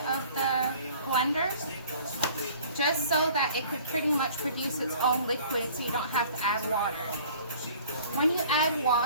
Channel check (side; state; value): both; inverted; correlation -0.50